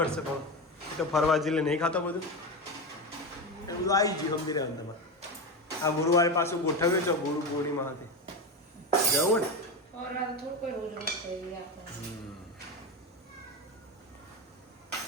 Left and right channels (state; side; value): normal; both; correlation 0.17